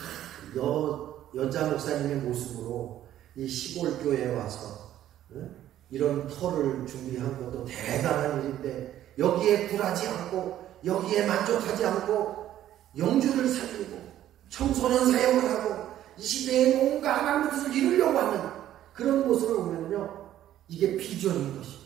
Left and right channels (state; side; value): quieter; left; 12.3 dB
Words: 여자 목사님의 모습으로 이 시골 교회에 와서 이런 터를 준비한 것도 대단한 일인데 여기에 굴하지 않고 여기에 만족하지 않고 영주를 살리고 청소년 사역을 하고 이 시대에 뭔가 하나님의 뜻을 이루려고 하는 그런 모습을 보면요 이게 비전인 것입니다.